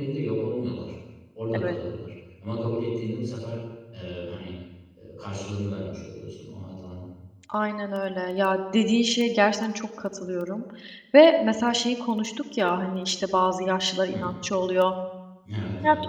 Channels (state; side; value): identical; both; correlation 1.00